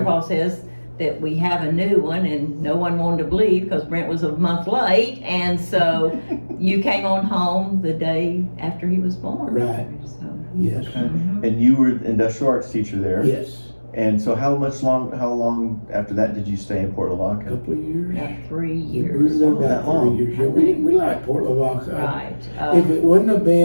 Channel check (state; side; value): inverted; both; correlation -1.00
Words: says that we have a new one, and no one wanted to believe because Brent was a month late. And so you came on home the day after he was born. Right. So, Yes. Okay. And you were industrial arts teacher there. Yes. And so how long after that did you stay in Port A Lavaca? couple of years. about 3 We years. were there that about long. 3 years. Yeah, we like Port Lavaca. Right. If it wouldn't have